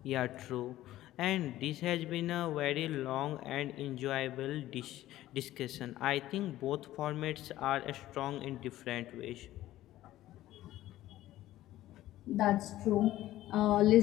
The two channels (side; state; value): right; quieter; 14.7 dB